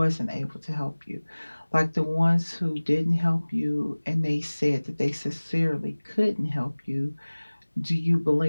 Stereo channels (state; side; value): inverted; both; correlation -1.00